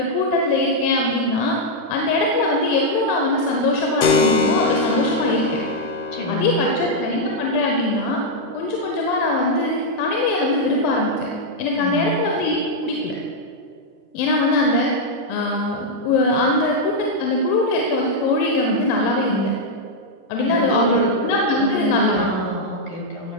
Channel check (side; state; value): right; late; 12 ms